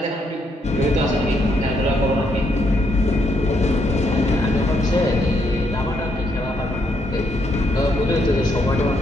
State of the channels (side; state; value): both; normal; correlation 0.75